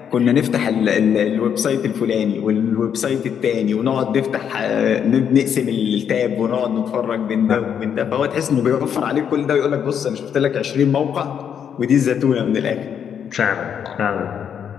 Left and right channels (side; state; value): right; quieter; 8.2 dB